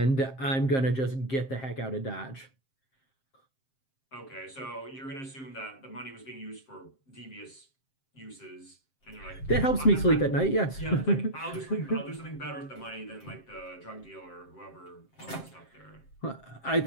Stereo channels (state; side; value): late; right; 7.6 ms